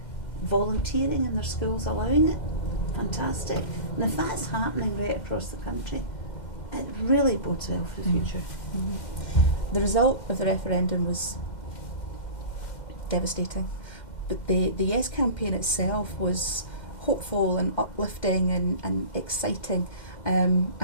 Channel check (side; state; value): right; late; 2.1 ms